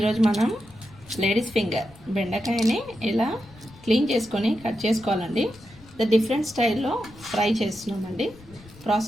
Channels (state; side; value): noise; left; rumble, 23 dB below the sound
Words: మనం లేడీస్ ఫింగర్ బెండకాయని ఇలా క్లీన్ చేసుకొని కట్ చేసుకోవాలండి. డిఫరెంట్ స్టైల్లో ఫ్రై చేస్తున్నామండి.